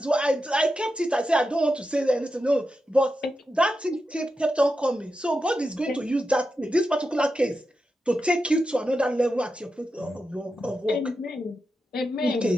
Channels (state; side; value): normal; both; correlation 0.89